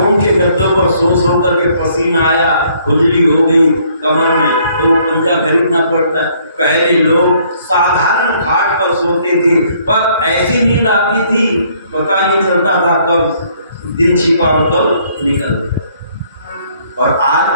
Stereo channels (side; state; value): both; inverted; correlation -0.64